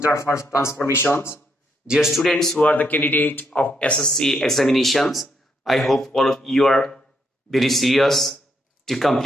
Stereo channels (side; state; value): both; normal; correlation 0.76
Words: transformations. Dear students who are the candidate of SSC examinations, I hope all of you are very serious to